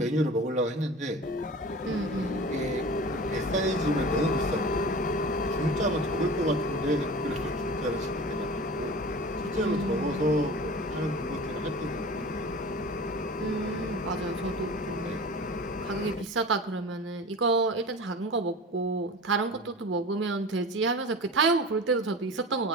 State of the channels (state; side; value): normal; both; correlation 0.36